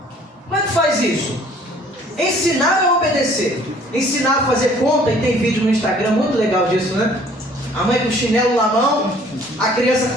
Como é que faz isso? Ensinar a obedecer. Ensinar a fazer conta, e tem vídeo no Instagram muito legal disso, né? A mãe com o chinelo na mão, a criança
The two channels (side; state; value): both; normal; correlation 0.56